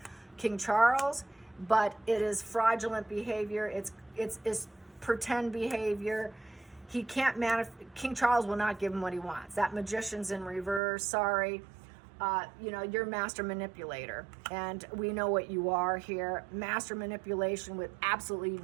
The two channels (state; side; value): drops out; left; at 10.8 s